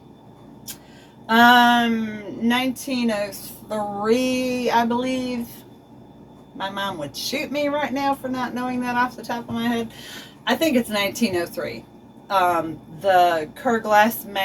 1903, I believe. My mom would shoot me right now for not knowing that off the top of my head. I think it's 1903. The Kerr Glass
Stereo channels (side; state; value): both; identical; correlation 1.00